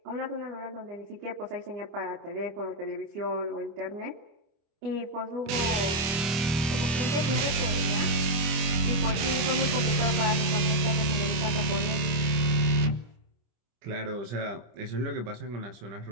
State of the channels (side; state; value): left; late; 25 ms